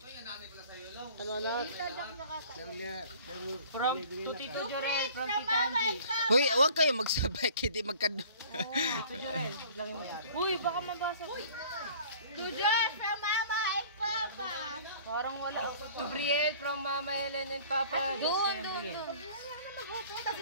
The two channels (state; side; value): inverted; both; correlation -0.49